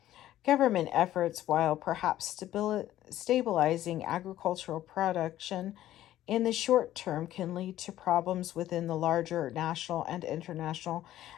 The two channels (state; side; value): quieter; right; 13.5 dB